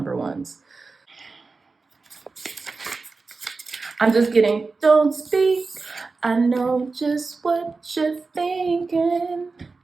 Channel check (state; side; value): quieter; left; 4.0 dB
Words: ones. I'm just getting, don't speak. I know just what you're thinking.